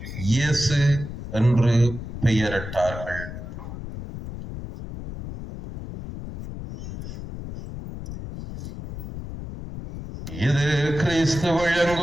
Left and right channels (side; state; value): left; noise; rumble, 9 dB below the sound